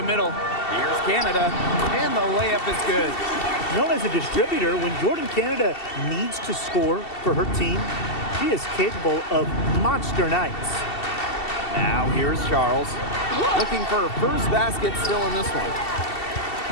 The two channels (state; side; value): late; right; 2.7 ms